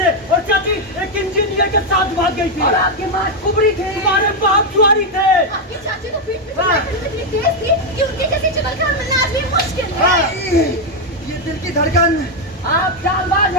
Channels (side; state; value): both; normal; correlation 0.02